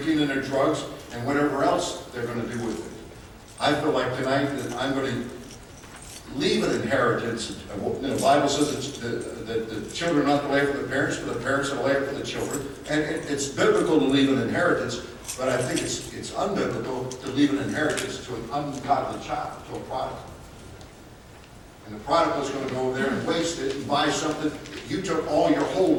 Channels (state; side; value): identical; both; correlation 1.00